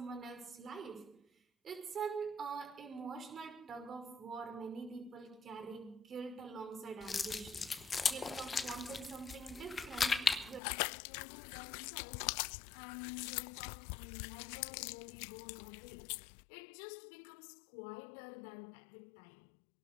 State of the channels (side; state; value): right; drops out; at 10.6 s